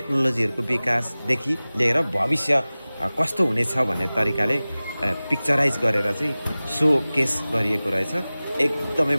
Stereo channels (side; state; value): both; inverted; correlation -0.98